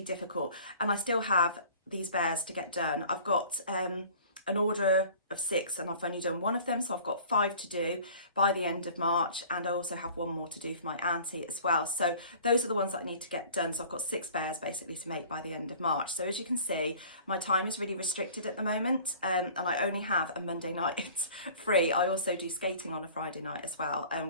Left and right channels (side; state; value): both; inverted; correlation -0.48